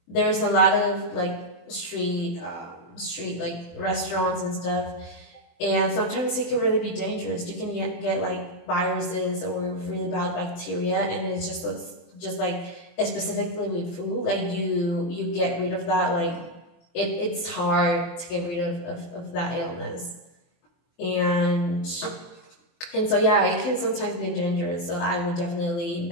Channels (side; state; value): right; late; 24 ms